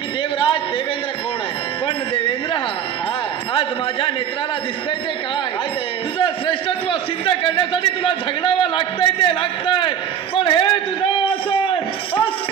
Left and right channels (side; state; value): left; quieter; 8.8 dB